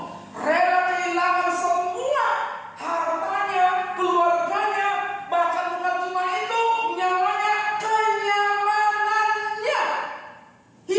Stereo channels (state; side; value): identical; both; correlation 1.00